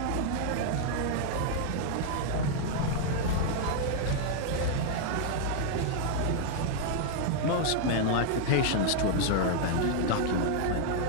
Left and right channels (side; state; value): both; different; correlation 0.00